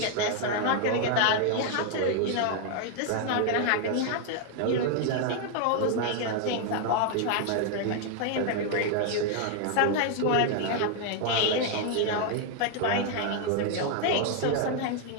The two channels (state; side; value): different; both; correlation 0.00